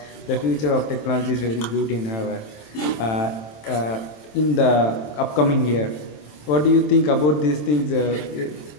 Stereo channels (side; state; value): right; late; 27 ms